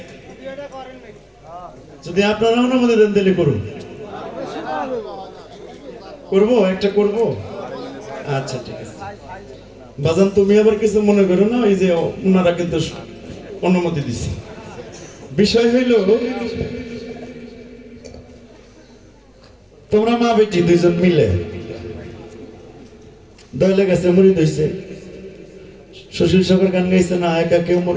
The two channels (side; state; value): both; identical; correlation 1.00